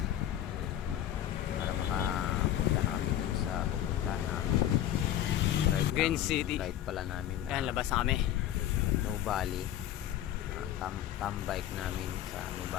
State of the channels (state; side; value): quieter; right; 11.8 dB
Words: para makapunta na kami dun sa pupuntahan namin. Green City. Ride pala namin na Ayan, labas na kami. Nubali. Bike namin sa